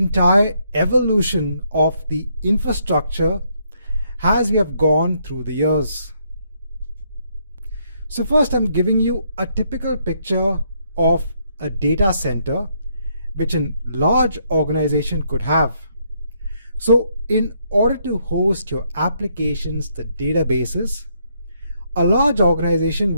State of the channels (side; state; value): both; inverted; correlation -0.73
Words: evolution of the infrastructure as we have gone through the years. So first, I'm giving you a typical picture of a data center which a large organization could have. So in order to host your applications, the databases, a large organization